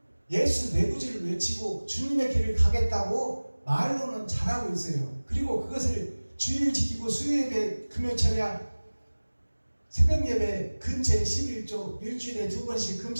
예수 내구지를 외치고 주님의 길을 가겠다고 말로는 잘하고 있어요. 그리고 그것을 주일 지키고 수요예배, 금요철야, 새벽예배 근처에 11조, 일주일에 2번씩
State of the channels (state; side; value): inverted; both; correlation -1.00